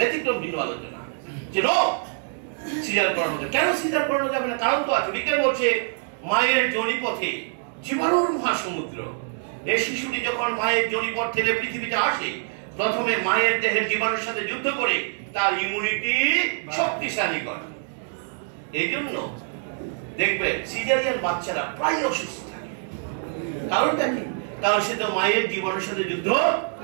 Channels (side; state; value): left; silent; 62 dB below the other